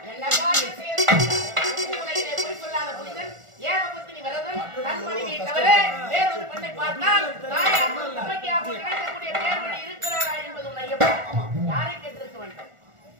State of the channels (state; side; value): late; left; 1.4 ms